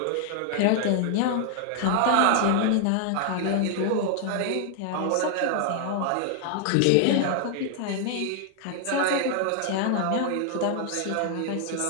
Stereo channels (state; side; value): different; both; correlation 0.00